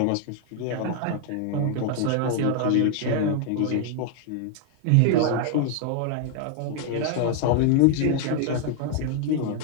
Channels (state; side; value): different; both; correlation 0.00